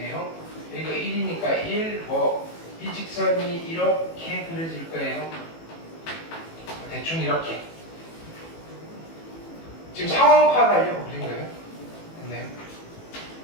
여기가 1이니까 1, 이 직선이 이렇게 그려질 거예요. 대충 이렇게. 지금 상황 파악하려고 그린 거예요. 됐나요?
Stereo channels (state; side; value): late; right; 18 ms